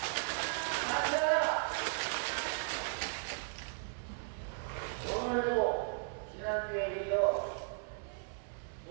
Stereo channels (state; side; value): silent; left; 54 dB below the other